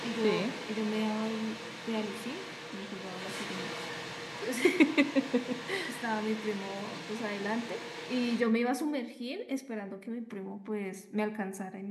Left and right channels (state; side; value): identical; both; correlation 1.00